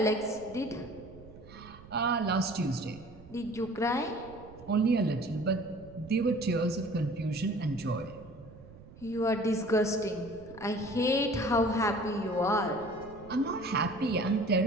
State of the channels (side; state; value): right; noise; rumble, 19 dB below the sound